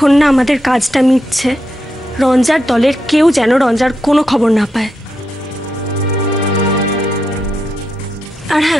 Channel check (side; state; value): both; normal; correlation 0.84